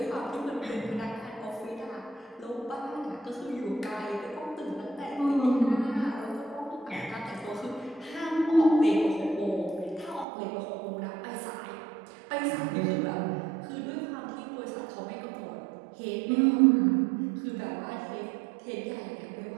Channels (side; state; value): left; drops out; at 10.2 s